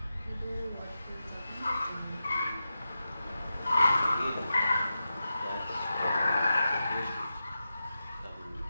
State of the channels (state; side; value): inverted; both; correlation -0.90